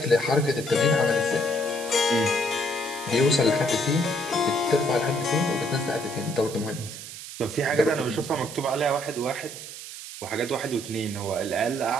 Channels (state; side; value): noise; right; hiss, 11 dB below the sound